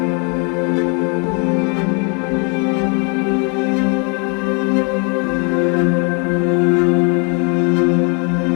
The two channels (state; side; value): quieter; right; 35.8 dB